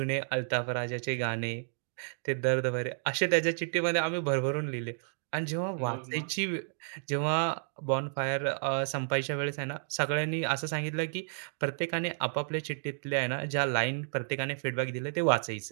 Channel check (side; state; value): left; silent; digital silence